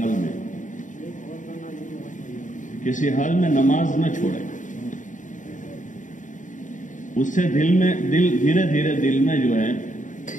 میں، کسی حال میں نماز نہ چھوڑے. اس سے دل دھیرے دھیرے دل میں جو ہے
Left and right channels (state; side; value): late; right; 0.37 ms